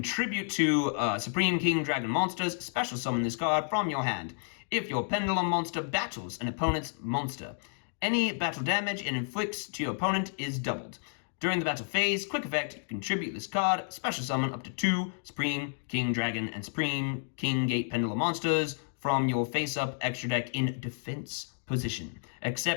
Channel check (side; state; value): right; silent; 57 dB below the other